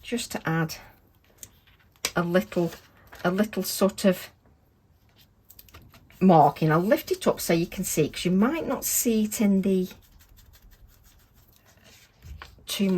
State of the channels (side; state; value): both; identical; correlation 1.00